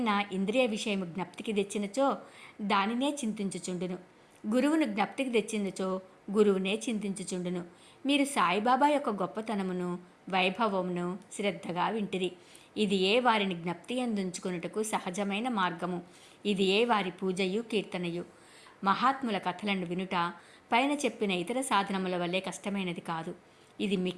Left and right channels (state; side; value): identical; both; correlation 1.00